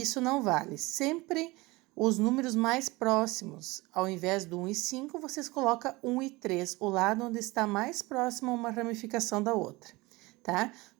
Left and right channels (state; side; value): quieter; left; 22.2 dB